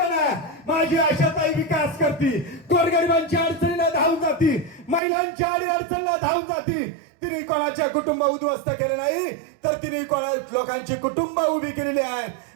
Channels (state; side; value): drops out; left; at 5.0 s